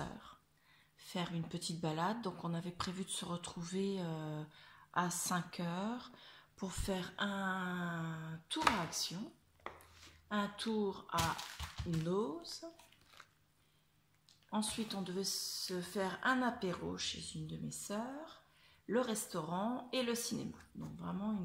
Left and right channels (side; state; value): both; identical; correlation 1.00